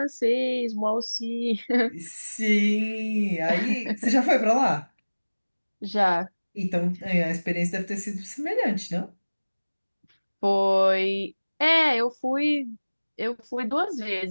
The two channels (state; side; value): inverted; both; correlation -1.00